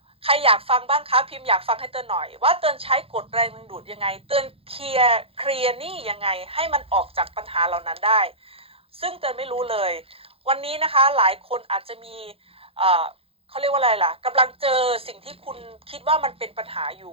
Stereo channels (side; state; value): left; late; 0.27 ms